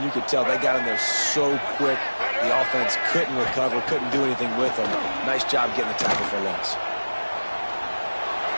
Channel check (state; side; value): inverted; both; correlation -1.00